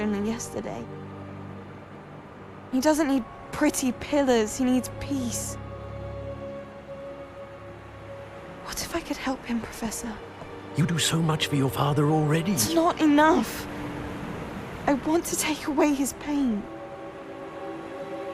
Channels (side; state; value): both; identical; correlation 1.00